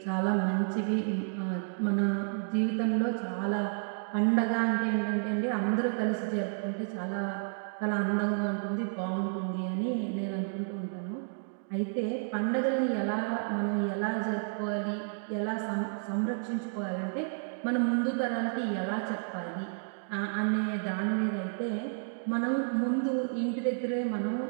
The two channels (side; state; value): left; silent; digital silence